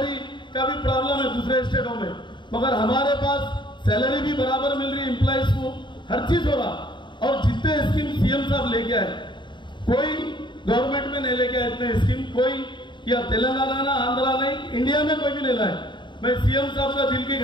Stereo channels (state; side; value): late; right; 0.23 ms